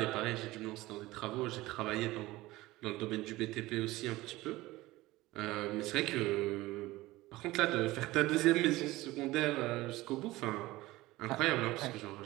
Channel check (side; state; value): left; quieter; 18.6 dB